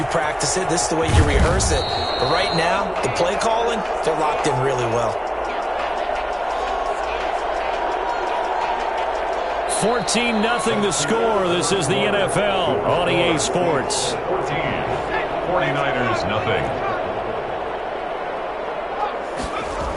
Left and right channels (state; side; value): identical; both; correlation 1.00